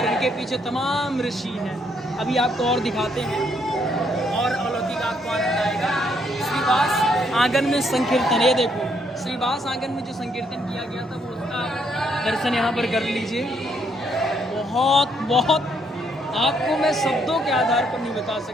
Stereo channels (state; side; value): normal; both; correlation 0.72